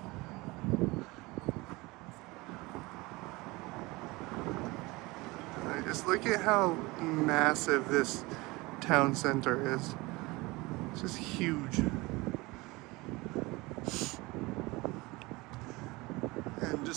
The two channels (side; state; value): left; quieter; 22.8 dB